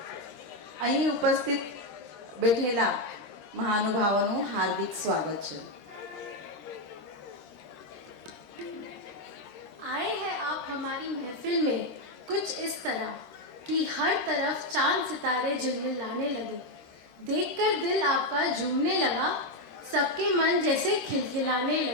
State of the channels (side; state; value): right; late; 13 ms